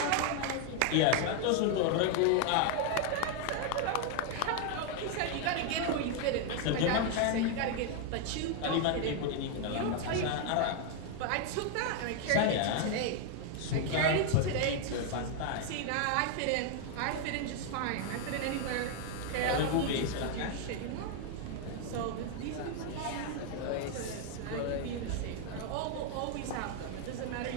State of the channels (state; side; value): different; both; correlation 0.01